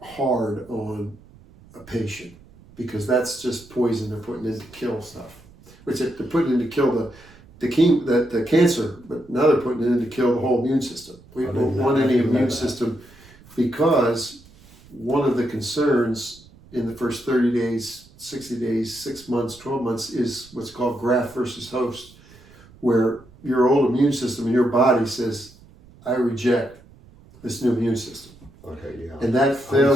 hard on a patient, because that's just poison they're putting in to kill stuff. Which they're putting in to kill the cancer, but now they're putting it in to kill the whole immune system. We don't want any immune system, because one of the concerns in the first 30 days, 60 days, 6 months, 12 months is what's called graft versus host, where your old immune system in your body says, I reject this new immune system. Okay, yeah. And that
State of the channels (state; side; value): noise; right; rumble, 24 dB below the sound